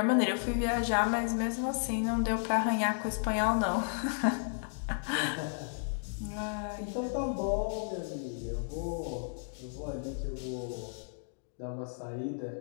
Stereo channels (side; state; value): right; silent; digital silence